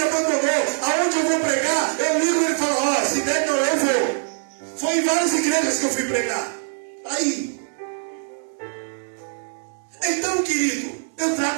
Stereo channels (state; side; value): silent; left; digital silence